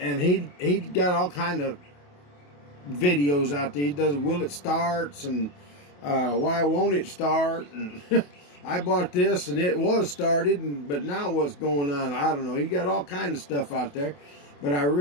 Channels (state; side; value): late; right; 28 ms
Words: he got all kind of videos out there. He does will it starts and why won't it start, and I bought this and it was started, but now what's going on, I don't know. He got all kinds of stuff out there, but I